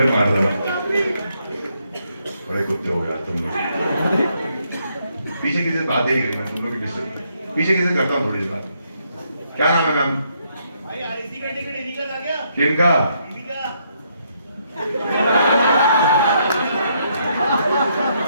मार देना बड़े कुत्ते हो गए तुम लोग पीछे किसी से बात ही नहीं करी मैं तुम लोग की डिस्टर्ब पीछे किसी करता हूँ थोड़ी सी बात क्या नाम है मैम? भाई आरसी का टिकट इन्हीं का था क्या? किनका? इन्हीं का।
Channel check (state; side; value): inverted; both; correlation -0.74